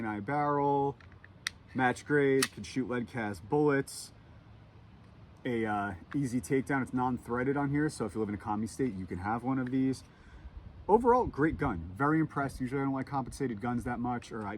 barrel. Match grade, can shoot lead cast bullets. A easy takedown. It's non-threaded on here, so if you live in a commie state, you can have one of these. Overall, great gun. Very impressed. Usually I don't like compensated guns that much, or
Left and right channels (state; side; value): identical; both; correlation 1.00